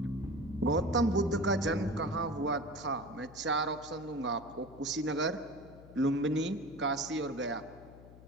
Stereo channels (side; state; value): left; noise; hum, 19 dB below the sound